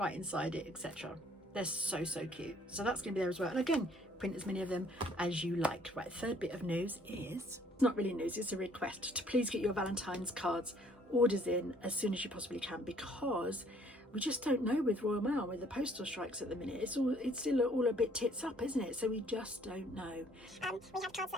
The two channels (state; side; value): normal; both; correlation 0.61